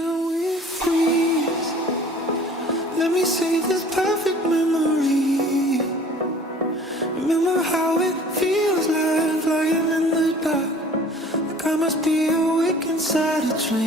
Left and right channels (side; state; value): both; normal; correlation 0.48